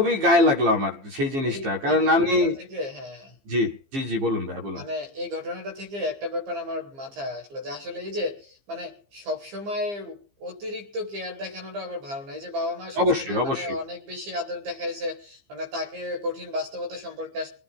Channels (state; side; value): late; left; 15 ms